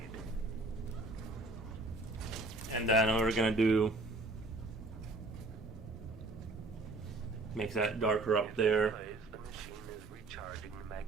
And then we're gonna do make that darker up there. Plays, the machine is recharging the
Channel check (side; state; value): left; quieter; 3.1 dB